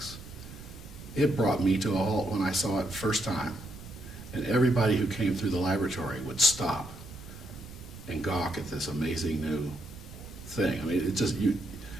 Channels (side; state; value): right; noise; rumble, 15 dB below the sound